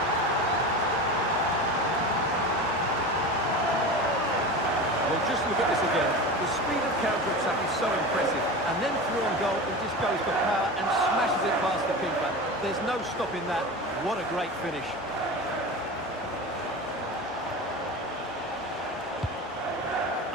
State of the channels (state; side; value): normal; both; correlation 0.29